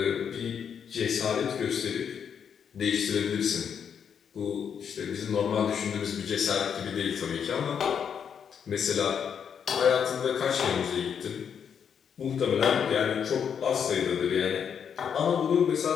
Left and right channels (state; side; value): quieter; right; 7.6 dB